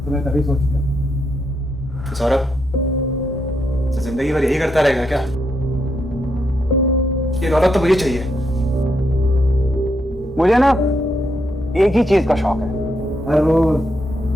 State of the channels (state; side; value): normal; both; correlation 0.80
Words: तो मैं तभी सोच गया। तो सौरभ, तो जिंदगी भर यही करता रहेगा क्या? ये दौलत तो मुझे चाहिए। मुझे ना एक ही चीज का शौक है, हर रोज